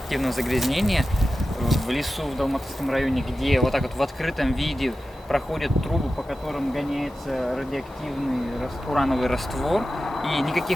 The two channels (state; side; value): normal; both; correlation 0.93